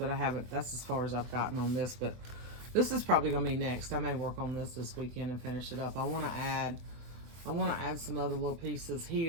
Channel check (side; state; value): left; late; 24 ms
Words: I haven't, that's as far as I've gotten on this, but this is probably going to be next. I may work on this weekend and finish it up. I want to add some other little pieces